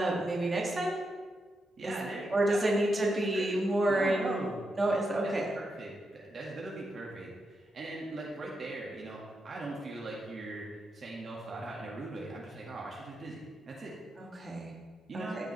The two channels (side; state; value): both; normal; correlation 0.85